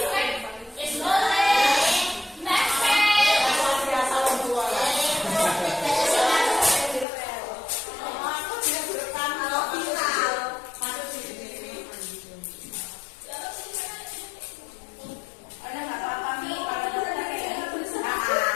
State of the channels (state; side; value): drops out; right; at 7.1 s